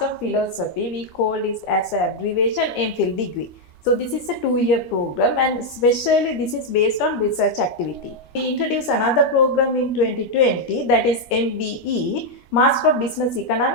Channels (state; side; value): late; right; 13 ms